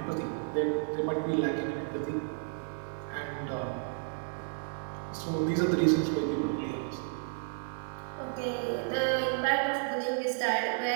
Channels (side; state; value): left; silent; 56 dB below the other